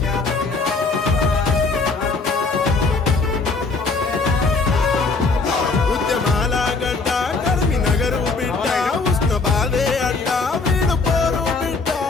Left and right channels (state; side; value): quieter; right; 4.0 dB